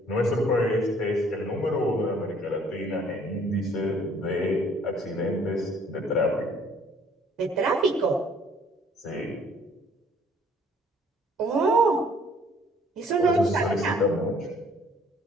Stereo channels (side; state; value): both; normal; correlation 0.59